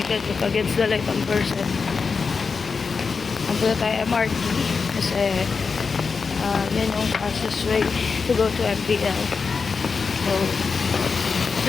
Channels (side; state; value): right; quieter; 5.0 dB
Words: against the light on person. Pupunta tayo MRT kasi yan yung fastest way to go to MPL. So